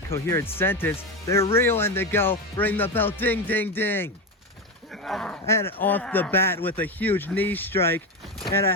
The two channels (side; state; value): both; normal; correlation 0.16